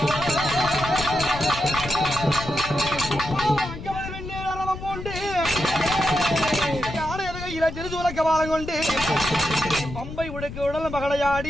திருசூல கபாலம் கொண்டு பம்பை உடுக்கு உடல்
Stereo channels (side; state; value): left; noise; rumble, 10 dB below the sound